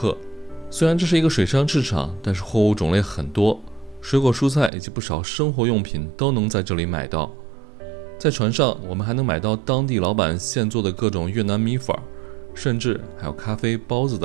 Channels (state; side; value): drops out; left; at 4.7 s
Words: 虽然这是一个水上市场，但是货物种类很多，水果蔬菜以及不少生活用品都能在这里买到。在船上，我们还能买到当地老板现做的各种越南米粉，甚至还有咖啡、包子